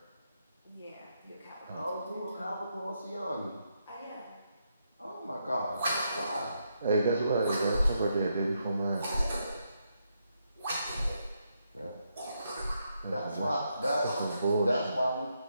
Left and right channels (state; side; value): inverted; both; correlation -0.80